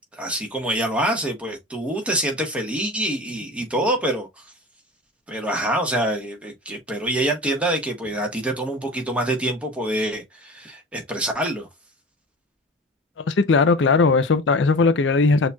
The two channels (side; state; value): both; normal; correlation 0.35